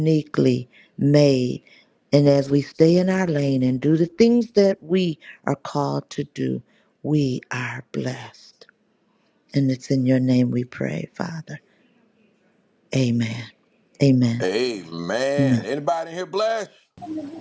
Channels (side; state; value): both; identical; correlation 1.00